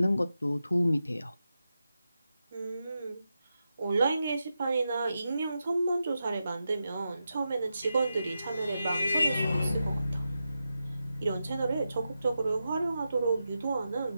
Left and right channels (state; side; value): inverted; both; correlation -0.89